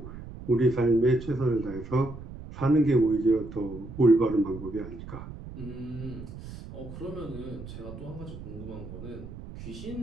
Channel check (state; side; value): noise; right; rumble, 12 dB below the sound